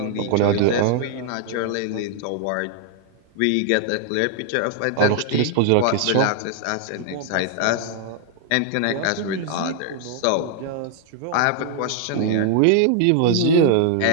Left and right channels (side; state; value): both; different; correlation 0.00